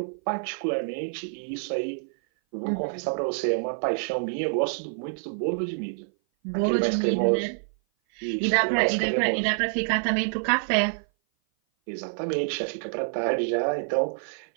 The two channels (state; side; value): silent; left; 57 dB below the other